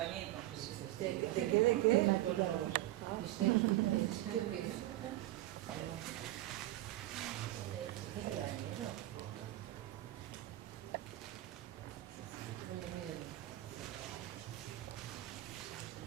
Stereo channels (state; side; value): quieter; left; 15.8 dB